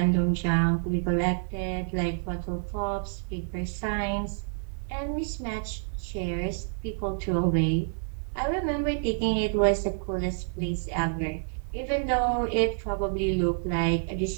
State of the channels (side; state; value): left; silent; digital silence